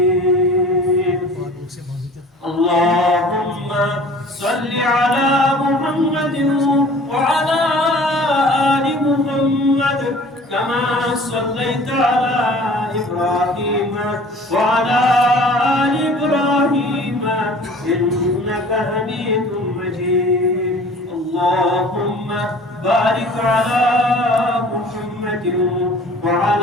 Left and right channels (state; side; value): normal; both; correlation 0.47